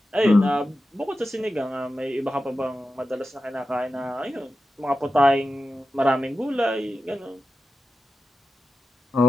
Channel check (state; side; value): normal; both; correlation 0.92